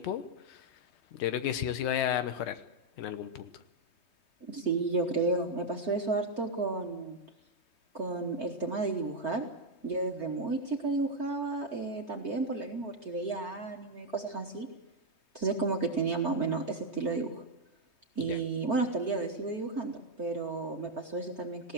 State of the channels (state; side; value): late; right; 3.2 ms